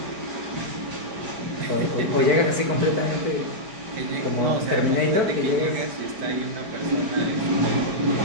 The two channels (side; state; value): left; late; 4.6 ms